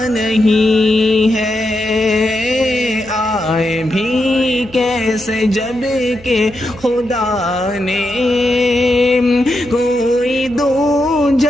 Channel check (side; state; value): left; noise; hum, 23 dB below the sound